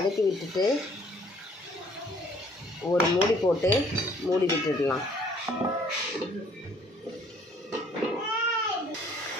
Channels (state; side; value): normal; both; correlation 0.59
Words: விட்டுட்டு ஒரு மூடி போட்டு மூடி விட்டுடலாம்.